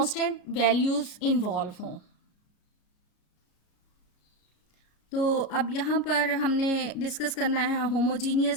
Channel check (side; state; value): right; late; 33 ms